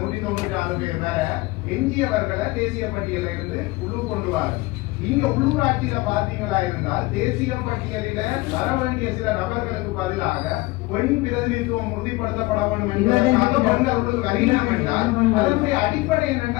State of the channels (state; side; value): quieter; right; 21.5 dB